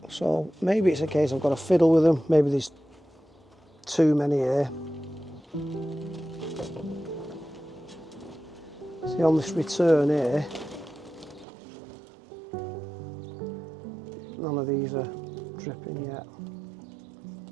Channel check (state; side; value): drops out; left; at 11.5 s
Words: So maybe it's a case I've got to fiddle with them. Maybe there's too many here. See, on this return here, none of these are dripping yet.